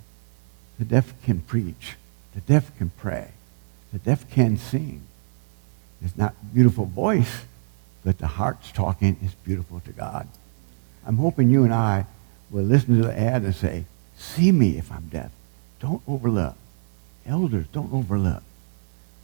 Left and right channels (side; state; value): left; silent; digital silence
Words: The deaf can preach. The deaf can pray. The deaf can sing. It's not a beautiful voice, but the heart's talking is beautiful to God. I'm hoping you and I will listen to the ad and say, see me if I'm deaf. Don't overlook. Elders, don't overlook.